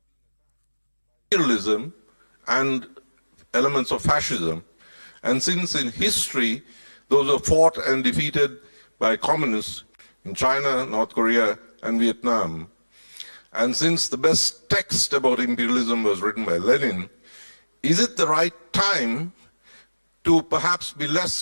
Imperialism and elements of fascism, and since in history those were fought and defeated by communists in China, North Korea, and Vietnam, and since the best text about imperialism was written by Lenin, is it the right time to perhaps be less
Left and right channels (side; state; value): both; inverted; correlation -1.00